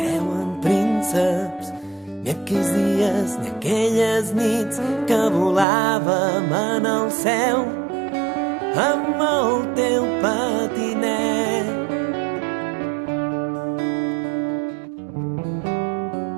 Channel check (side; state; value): left; drops out; at 5.7 s